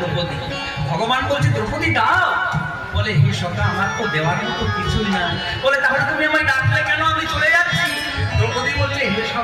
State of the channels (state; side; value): identical; both; correlation 1.00